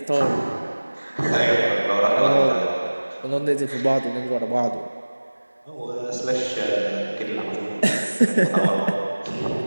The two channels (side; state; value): both; inverted; correlation -1.00